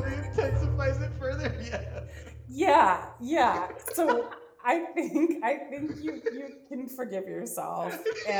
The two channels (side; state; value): both; identical; correlation 1.00